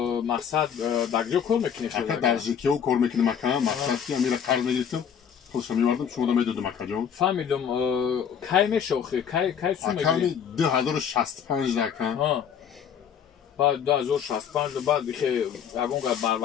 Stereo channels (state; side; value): quieter; right; 8.0 dB